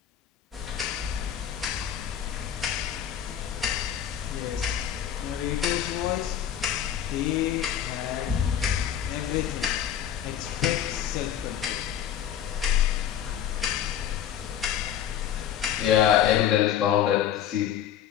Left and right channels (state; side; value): quieter; right; 10.0 dB